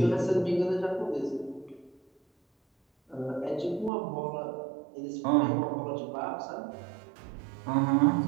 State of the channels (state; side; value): drops out; left; at 3.9 s